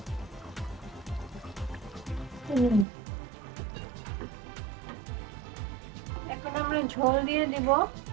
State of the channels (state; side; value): drops out; left; at 2.9 s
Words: এখন আমরা ঝোল দিয়ে দিব।